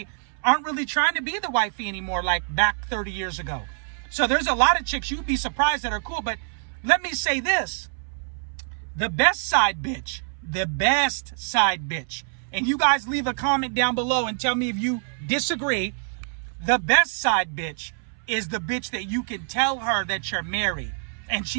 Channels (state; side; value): silent; left; 61 dB below the other